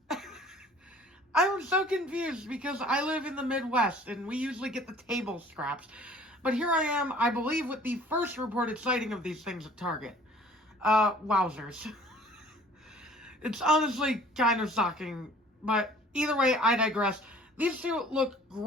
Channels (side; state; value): both; normal; correlation 0.52